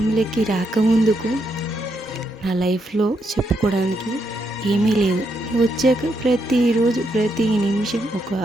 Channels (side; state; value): both; normal; correlation 0.79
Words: రాకముందుకు నా లైఫ్లో చెప్పుకోవడానికి ఏమీ లేదు. నువ్వు వచ్చాక ప్రతిరోజు ప్రతి నిమిషం ఒక